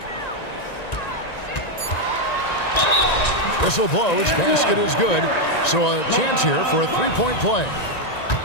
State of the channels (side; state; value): right; late; 1.9 ms